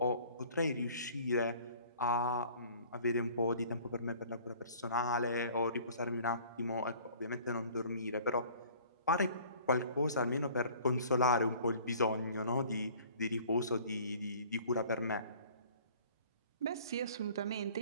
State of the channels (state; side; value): inverted; both; correlation -0.51